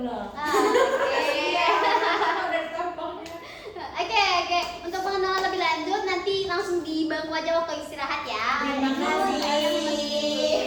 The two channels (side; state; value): both; identical; correlation 1.00